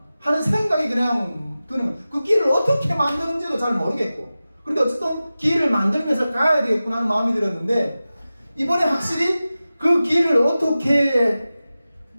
하는 생각이 그냥 드는 거예요. 그 길을 어떻게 만드는지도 잘 모르겠고, 그런데 어쨌든 길을 만들면서 가야 되겠구나 하는 마음이 들었는데, 이번에 확실히 그 길을 어떻게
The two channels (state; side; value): inverted; both; correlation -0.95